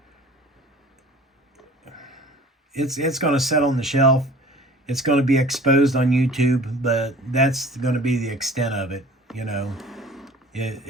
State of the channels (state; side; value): normal; both; correlation 0.46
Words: it's going to set on the shelf. It's going to be exposed on YouTube, but that's going to be the extent of it, you know.